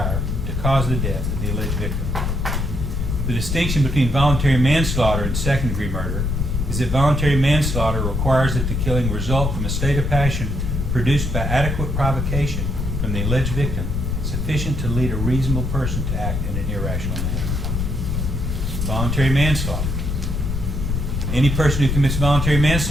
to cause the death of the alleged victim. The distinction between voluntary manslaughter and second-degree murder is that voluntary manslaughter requires that the killing result from a state of passion produced by adequate provocation from the alleged victim, sufficient to lead a reasonable person to act in an irrational manner. Voluntary manslaughter. Any person who commits voluntary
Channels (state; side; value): noise; left; rumble, 1 dB below the sound